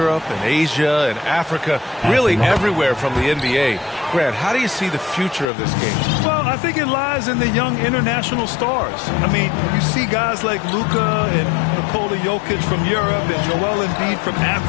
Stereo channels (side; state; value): right; drops out; at 5.5 s